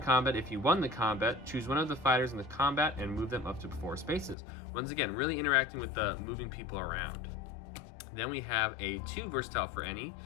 combat, if you won the combat, choose one of the fighters in the combat and move them up to 4 spaces. Once again, really interacting with the moving people around. Then we have a 2 versatile for Any,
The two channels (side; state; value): right; drops out; at 4.4 s